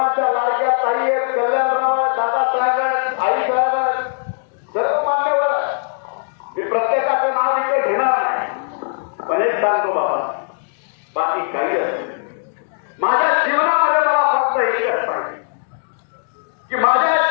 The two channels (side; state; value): right; silent; 66 dB below the other